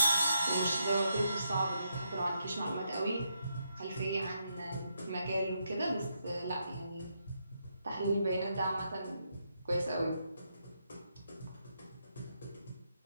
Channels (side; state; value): both; inverted; correlation -0.80